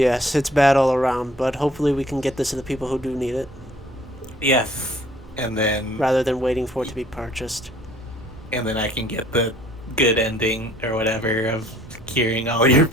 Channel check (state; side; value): normal; both; correlation 0.57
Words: it's bad all around, but hopefully we can get this to the people who do need it, Yes, and then rather than waiting for it to be purchased. I can get the good ending or whatever of curing all your